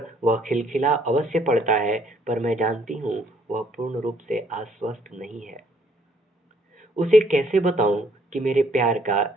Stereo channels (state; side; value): normal; both; correlation 0.65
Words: वह खिलखिला अवश्य पड़ता है, पर मैं जानती हूँ वह पूर्ण रूप से आश्वस्त नहीं है। उसे कैसे बताऊं कि मेरे प्यार का,